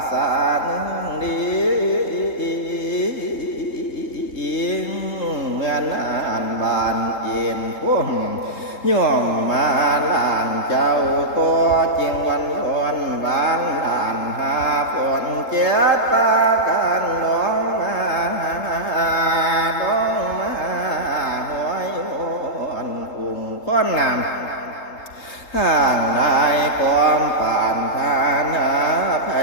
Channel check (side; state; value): right; late; 3.8 ms